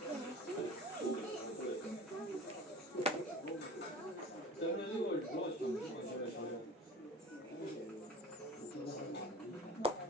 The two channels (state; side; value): normal; both; correlation 0.39